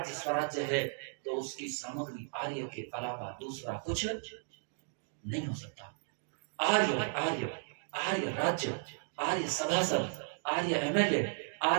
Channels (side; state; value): left; silent; digital silence